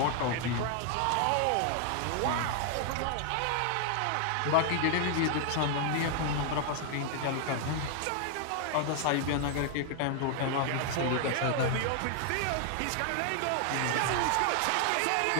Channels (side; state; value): both; different; correlation 0.00